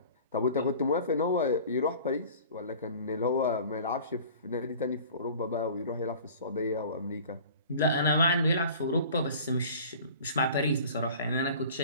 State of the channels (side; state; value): both; inverted; correlation -0.44